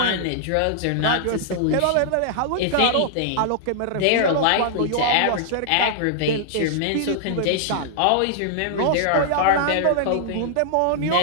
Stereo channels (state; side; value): different; both; correlation -0.01